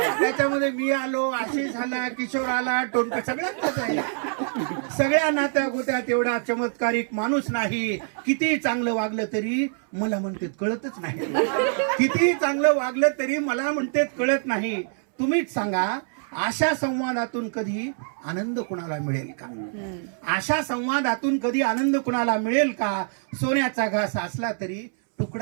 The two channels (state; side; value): silent; left; 62 dB below the other